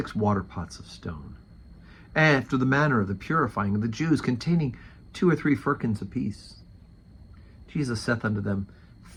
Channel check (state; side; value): identical; both; correlation 1.00